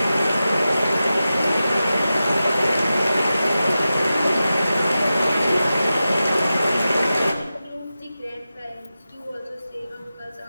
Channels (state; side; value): inverted; both; correlation -0.93